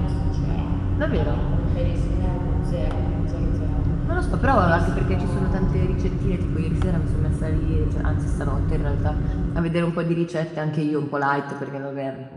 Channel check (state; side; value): identical; both; correlation 1.00